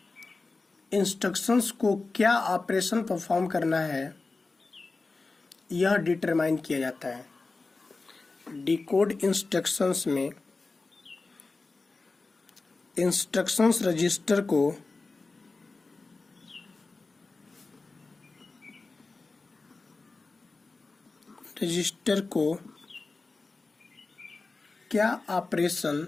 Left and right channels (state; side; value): quieter; right; 3.7 dB